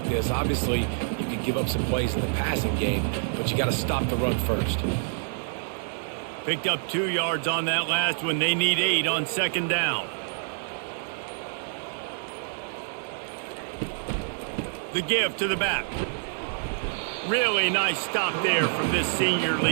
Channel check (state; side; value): silent; left; digital silence